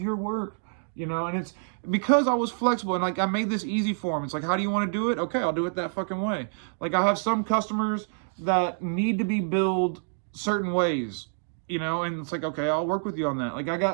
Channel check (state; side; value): silent; left; digital silence